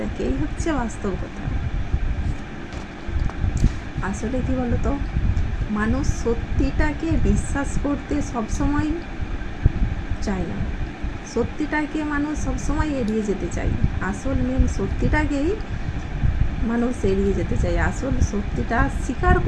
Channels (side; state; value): both; identical; correlation 1.00